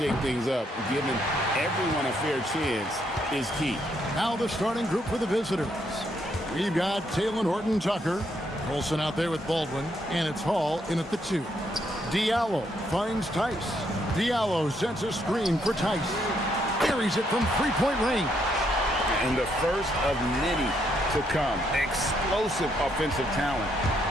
things up. Giving everyone a fair chance is key. Now the starting group for the visitors. We've got Taylor Horton-Tucker, Olsen out there with Baldwin, and it's Hall in at the 2. Diallo finds Tice. Diallo sets a screen for Tice. Carries it from three-point range. And the first of many to come. Explosive offensive talent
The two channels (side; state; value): both; normal; correlation 0.74